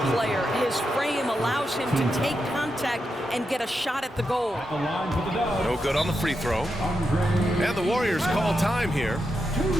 player. His frame allows him to take contact and get a shot at the goal. No good on the free throw. And the Warriors call time here.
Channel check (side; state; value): both; normal; correlation 0.86